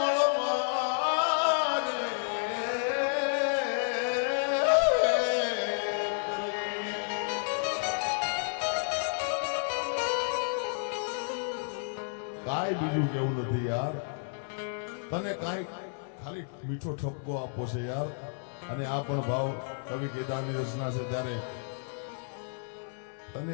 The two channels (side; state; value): right; silent; 57 dB below the other